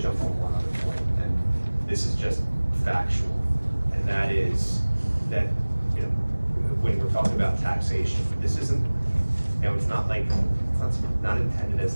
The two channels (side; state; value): both; inverted; correlation -1.00